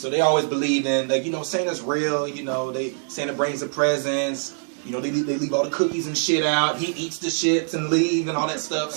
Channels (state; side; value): silent; left; 63 dB below the other